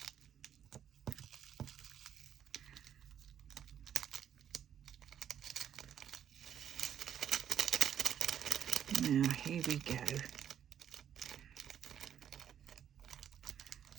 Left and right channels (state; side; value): quieter; left; 9.4 dB